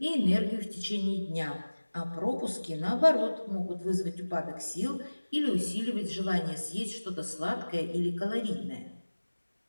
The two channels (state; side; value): inverted; both; correlation -1.00